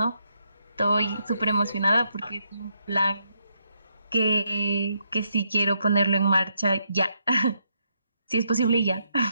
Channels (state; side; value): inverted; both; correlation -0.78